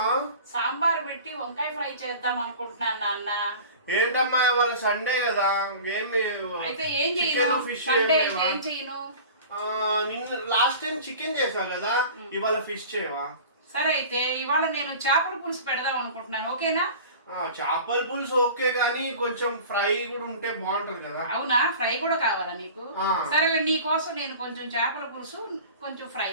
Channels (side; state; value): both; inverted; correlation -0.39